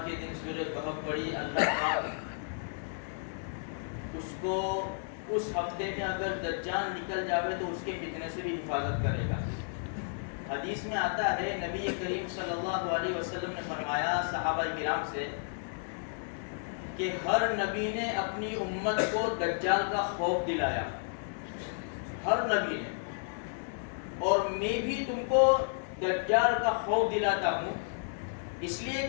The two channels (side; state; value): right; silent; digital silence